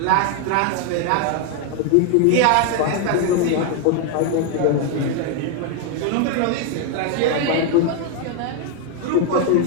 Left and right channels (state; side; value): different; both; correlation 0.01